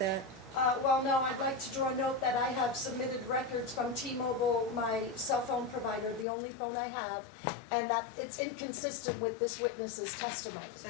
Well, no, I'd like to draw a note that I have submitted records from T-Mobile, my cell phone provider, the only phone I have, and that it's inconsistent with this witness's testimony. So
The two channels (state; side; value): drops out; right; at 6.2 s